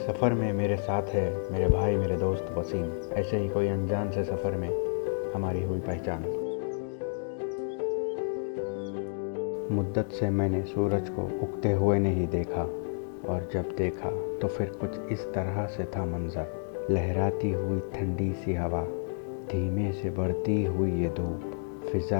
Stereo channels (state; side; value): silent; right; digital silence